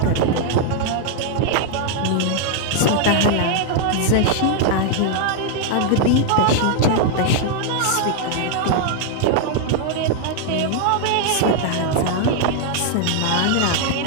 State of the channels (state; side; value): different; both; correlation 0.00